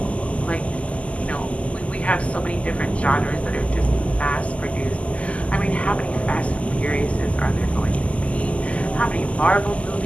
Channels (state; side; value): late; right; 0.065 ms